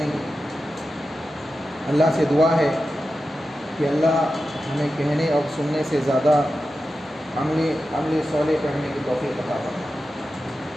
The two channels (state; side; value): normal; both; correlation 0.92